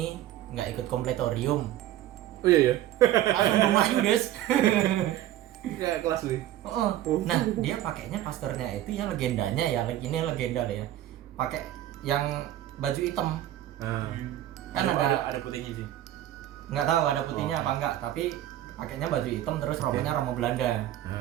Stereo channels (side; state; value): left; quieter; 13.2 dB